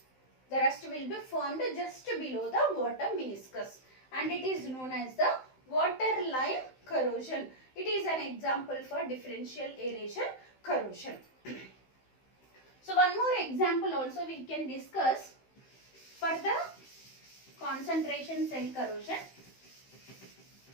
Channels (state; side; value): late; right; 15 ms